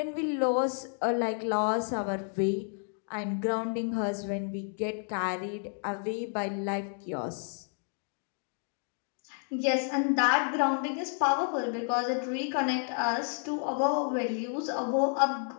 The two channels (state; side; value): silent; right; 57 dB below the other